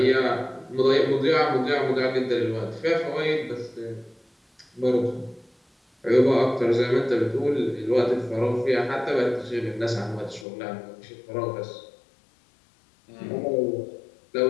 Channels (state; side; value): drops out; right; at 10.5 s